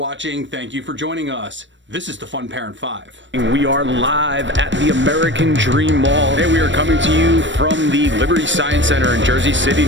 Thank you for joining us. This is the Fun Parent 5. We are live at the American Dream Mall. Today we are coming to you from the Liberty Science Center in Jersey City,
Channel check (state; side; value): late; left; 0.54 ms